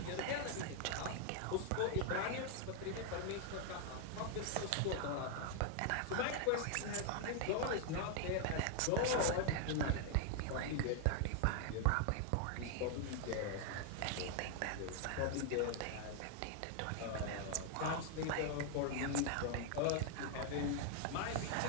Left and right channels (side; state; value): both; different; correlation 0.00